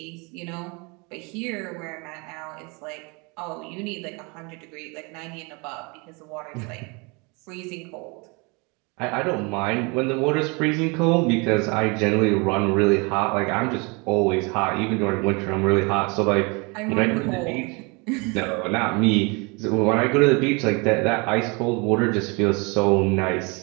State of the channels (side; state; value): left; quieter; 29.4 dB